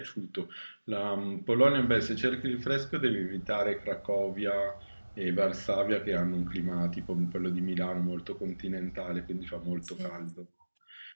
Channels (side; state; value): both; inverted; correlation -1.00